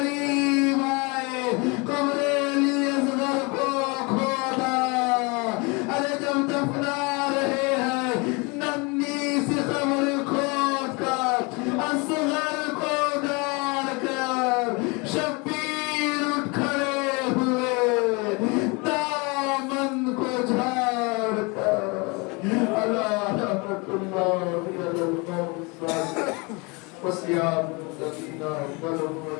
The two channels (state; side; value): quieter; right; 28.7 dB